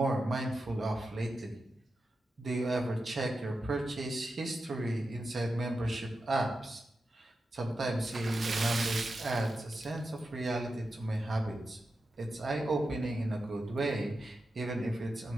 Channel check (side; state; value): both; normal; correlation 0.90